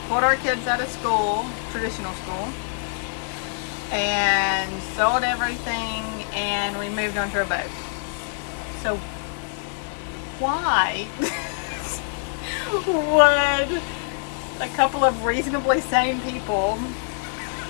pulled our kids out of school, traditional school, and sold everything, and we moved onto a boat. So why would a couple of reasonably sane people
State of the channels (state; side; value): silent; right; digital silence